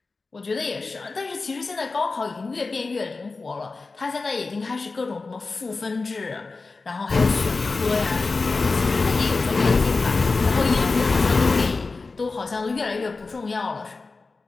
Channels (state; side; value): quieter; right; 3.9 dB